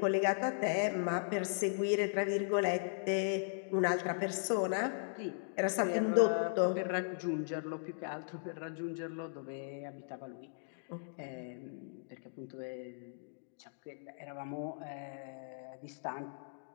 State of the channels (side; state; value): right; silent; digital silence